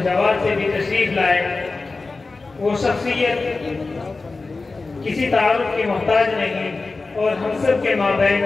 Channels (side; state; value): right; quieter; 3.7 dB